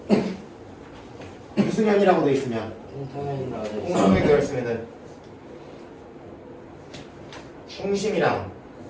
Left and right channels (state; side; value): identical; both; correlation 1.00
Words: 무슨 현이라고 돼 있으면 공통현이라고 돼 있어요. 공통현이 되어 있으면은 중심이랑